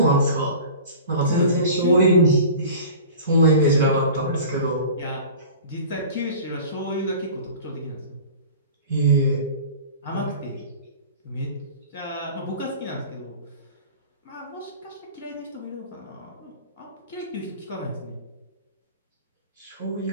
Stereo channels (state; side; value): inverted; both; correlation -0.40